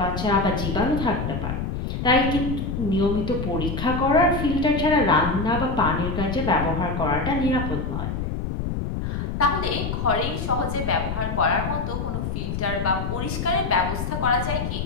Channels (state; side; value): noise; left; rumble, 3 dB below the sound